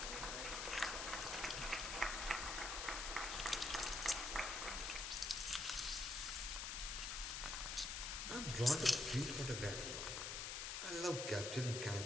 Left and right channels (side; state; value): left; noise; hiss, 3 dB below the sound